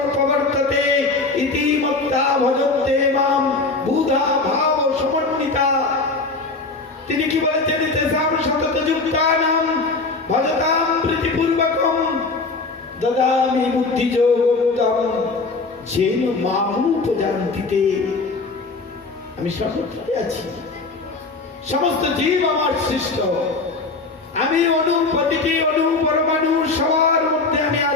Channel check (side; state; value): right; quieter; 3.7 dB